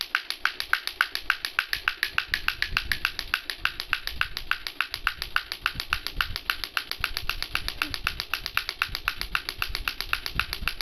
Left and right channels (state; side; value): identical; both; correlation 1.00